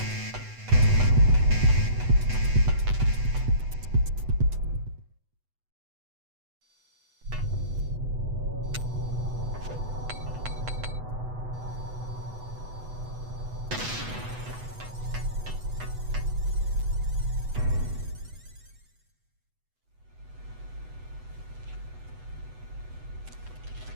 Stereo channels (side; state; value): left; late; 8.0 ms